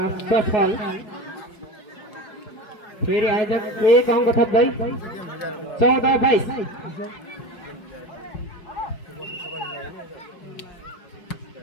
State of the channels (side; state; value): right; late; 4.7 ms